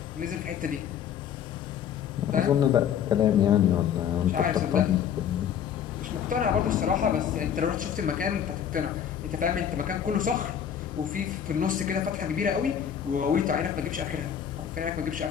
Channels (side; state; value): right; quieter; 8.8 dB